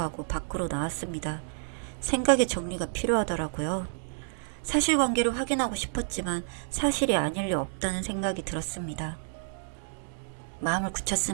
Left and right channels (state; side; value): silent; left; digital silence